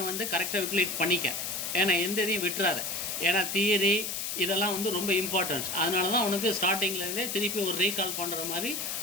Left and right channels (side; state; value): left; noise; hiss, 3 dB below the sound